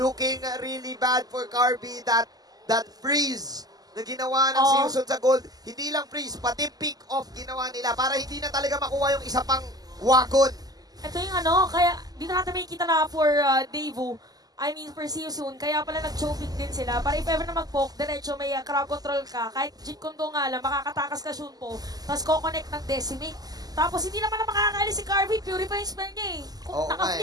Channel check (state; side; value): late; left; 0.18 ms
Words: really bad for Carvey. That freeze na ginawa ng See You Soon sa gold. Hindi lang freeze, pati pick off ginawa nila para hindi na talaga makuha yung isa pang wagon. Ito yung kaya dito natin makikita na for Devo, I mean for See You Soon, kaya pala nag-choking din sila. Para if ever na mag-poke, diretso may crowd control ka, kahit Jeet Kondo nga lang, makakatakas ka Shunpo, tapos ko-connect ng Decimate. Tapos hindi naman na makakaalis si Carvey, purify yung spell niya eh. Kung